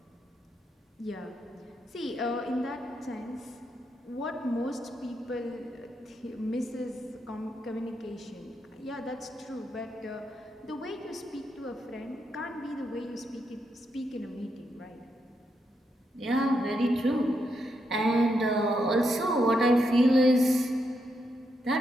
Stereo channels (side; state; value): both; normal; correlation 0.82